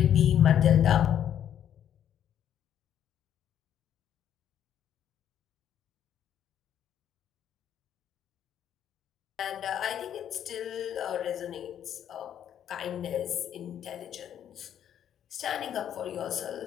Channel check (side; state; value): right; quieter; 9.9 dB